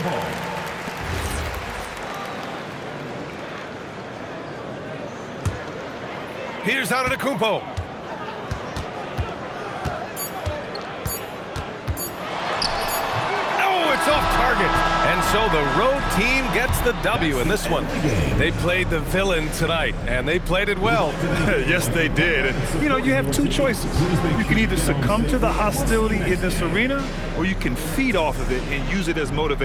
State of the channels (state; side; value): identical; both; correlation 1.00